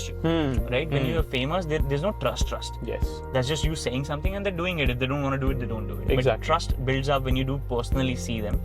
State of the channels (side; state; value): both; identical; correlation 1.00